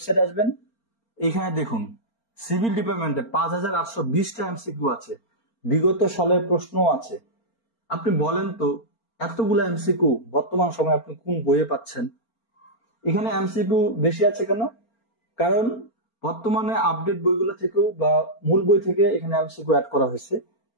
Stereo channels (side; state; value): right; late; 4.4 ms